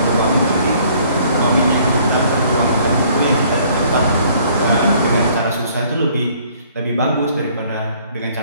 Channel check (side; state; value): both; inverted; correlation -0.59